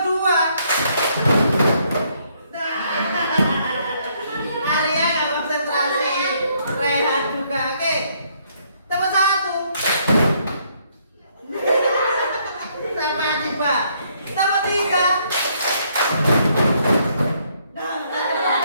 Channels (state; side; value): inverted; both; correlation -0.70